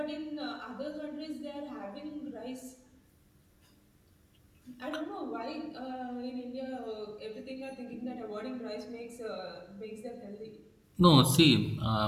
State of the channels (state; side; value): identical; both; correlation 1.00